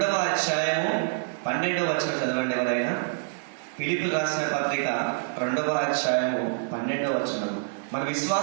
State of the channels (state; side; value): silent; left; 60 dB below the other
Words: అధ్యాయము 12వ వచనం చదవండి ఎవరైనా. ఫిలిప్పీయులకు రాసిన పత్రిక 2వ అధ్యాయము 12వ వచనం. మన